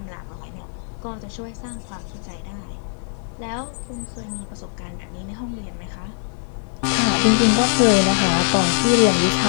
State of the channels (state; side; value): silent; right; 64 dB below the other